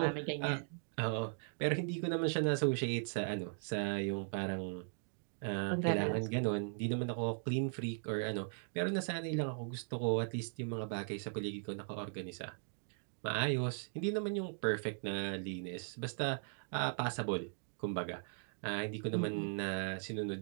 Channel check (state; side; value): silent; left; digital silence